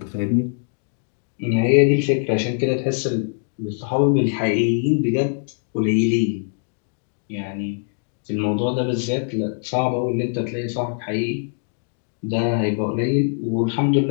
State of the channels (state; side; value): silent; right; digital silence